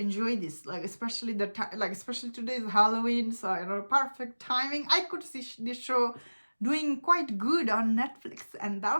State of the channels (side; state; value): both; inverted; correlation -1.00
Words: this, like especially especially today's Halloween, so perfect timing. I could see this show doing quite good on Netflix, and